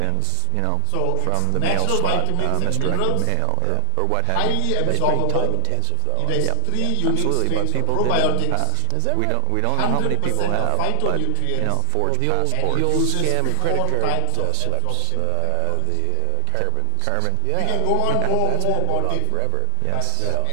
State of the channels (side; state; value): both; different; correlation 0.00